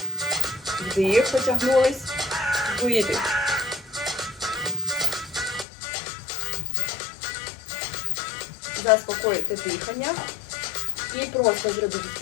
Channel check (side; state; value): right; drops out; at 5.7 s